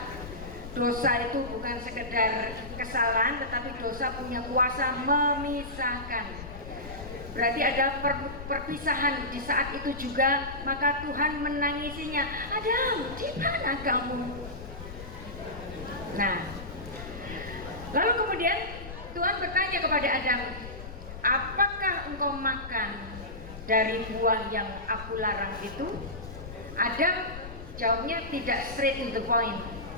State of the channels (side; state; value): left; noise; rumble, 11 dB below the sound